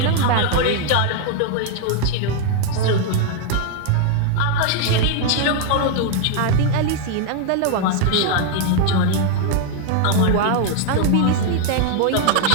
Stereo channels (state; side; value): different; both; correlation 0.00